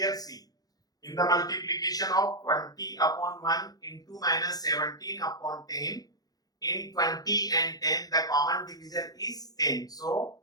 see, in the multiplication of 20 upon 1 into minus 17 upon 10, in 20 and 10, the common divisor is 10. So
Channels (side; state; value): right; late; 0.18 ms